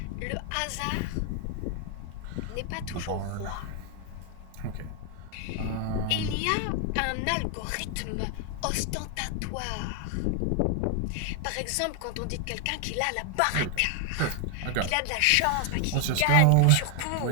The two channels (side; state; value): both; different; correlation 0.00